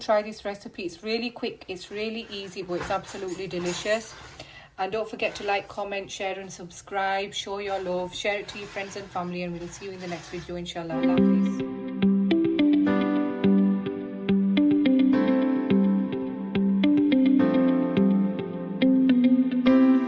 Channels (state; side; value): identical; both; correlation 1.00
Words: this recipe. It's really quick, it's really easy, but it's absolutely delicious. And don't forget to like, comment, share and subscribe. Show your love, share it to your friends and family, and we'll see you in the next video, inshallah.